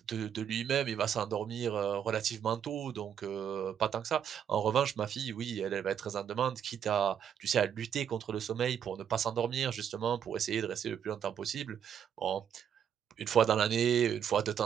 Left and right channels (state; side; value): quieter; left; 8.6 dB